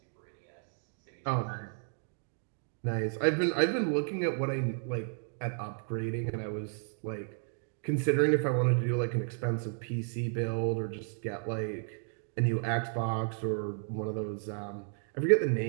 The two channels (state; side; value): silent; left; 56 dB below the other